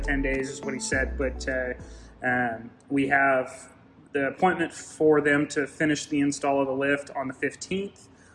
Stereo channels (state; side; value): identical; both; correlation 1.00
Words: days is what he said. But we have the appointment for them to finish the install of the lift on the 15th,